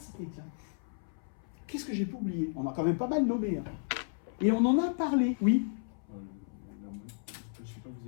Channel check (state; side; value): silent; right; 56 dB below the other